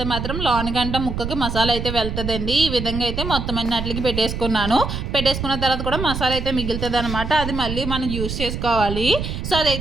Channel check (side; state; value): right; noise; rumble, 5 dB below the sound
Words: మాత్రం లోనిగంట ముక్కకి మసాలా అయితే వెళ్తుందండి. ఈ విధంగా అయితే మొత్తం అన్నిటికి పెట్టేసుకున్నాను. పెట్టేసుకున్న తర్వాత కూడా మసాలా అయితే మిగులుతుంది అనమాట. అది మళ్ళీ మనం యూస్ చేసుకోవాలి. సో